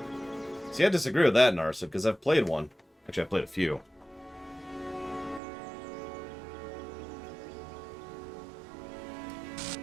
See, I disagree with that, Narsa, because I've played one. Actually, I've played a few.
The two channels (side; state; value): left; drops out; at 5.4 s